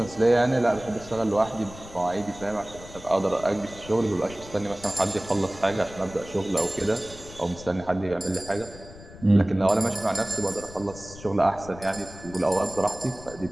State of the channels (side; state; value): left; noise; rumble, 17 dB below the sound